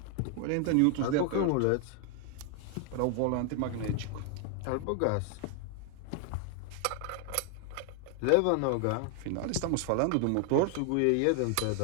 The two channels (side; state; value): both; different; correlation 0.00